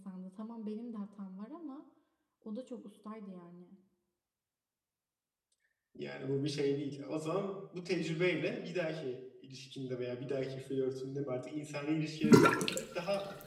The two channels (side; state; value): both; identical; correlation 1.00